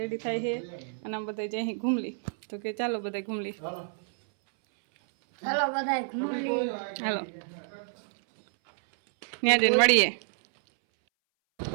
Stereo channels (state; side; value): silent; left; 59 dB below the other